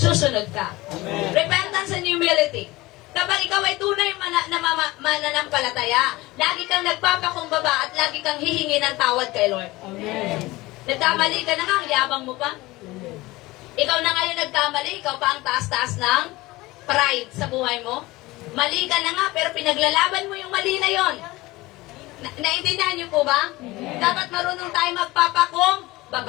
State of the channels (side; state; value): right; quieter; 20.1 dB